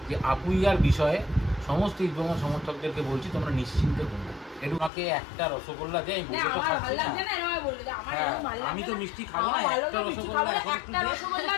যে আপুইয়ার বিষয়ে সমস্ত ইস্ট বেঙ্গল সমর্থকদেরকে বলছি তোমরা নিশ্চিন্তে ঘুমো। একটু আমাকে একটা রসগোল্লা দেয়, আমি তো মিষ্টি খাবো না, একটা রসগোল্লা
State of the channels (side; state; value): right; drops out; at 4.9 s